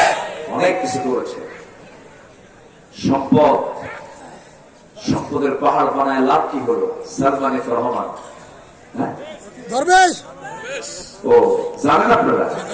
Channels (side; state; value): both; identical; correlation 1.00